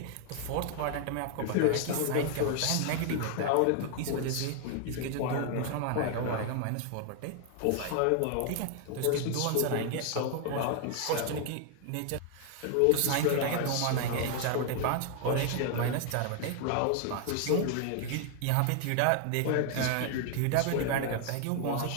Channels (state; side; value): different; both; correlation 0.00